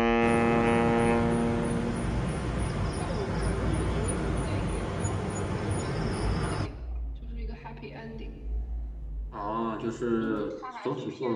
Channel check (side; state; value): both; identical; correlation 1.00